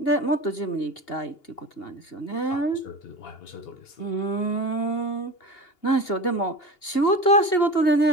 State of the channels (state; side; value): late; right; 2.8 ms